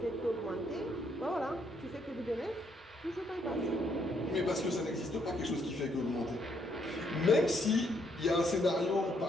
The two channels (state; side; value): normal; both; correlation 0.72